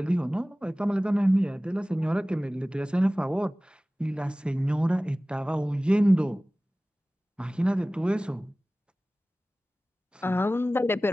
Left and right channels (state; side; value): normal; both; correlation 0.98